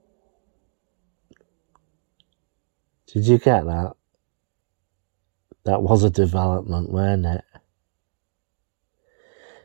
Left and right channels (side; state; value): left; silent; digital silence